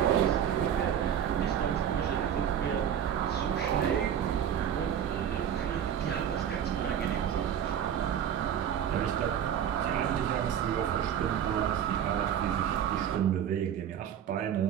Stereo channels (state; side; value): quieter; left; 9.3 dB